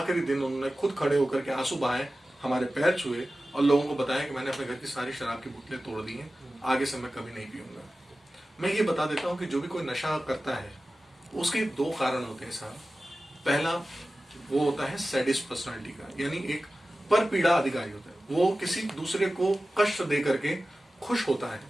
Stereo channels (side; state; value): both; normal; correlation 0.95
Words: दिन उन्होंने खुद खड़े होकर के आंसू बहाए, हमारे पैर छुए और लोगों को बताया कि मैंने अपने घर की सारी शराब की बोतलें तोड़ दी हैं, आगे से मैं कभी नहीं पीऊंगा। मैं ये बता देता हूँ कि जो भी कोई नशा करता है उसके दो कारण होते हैं साहब। पहला वो होता है सैडिस्ट पर्सनालिटी का, यानी एक पर पीड़ा अधिकारी होता है, वो किसी दूसरे को कष्ट दे करके खुश होता है।